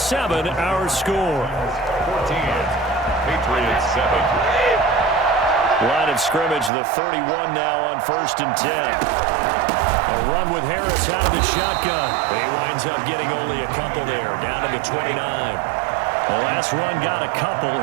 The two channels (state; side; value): drops out; left; at 6.7 s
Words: our score. 14, Patriots 7. Line of scrimmage, the 31 now on 1st and 10. A run with Harris out of the shotgun. He winds up getting only a couple there, down to the 29. The last run got a couple.